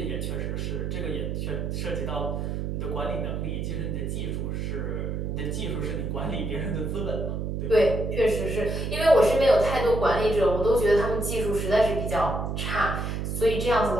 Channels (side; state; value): right; noise; hum, 2 dB below the sound